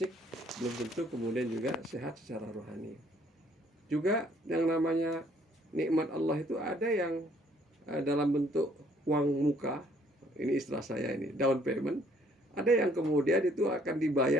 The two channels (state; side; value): normal; both; correlation 0.63